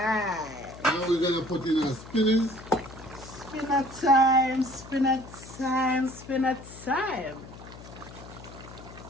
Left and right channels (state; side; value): noise; left; hum, 16 dB below the sound